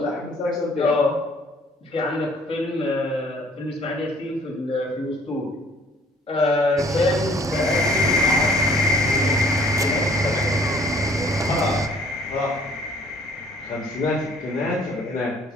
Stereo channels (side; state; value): both; normal; correlation 0.57